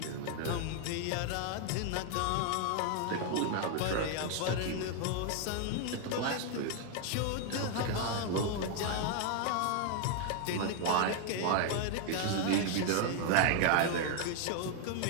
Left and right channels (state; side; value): different; both; correlation 0.00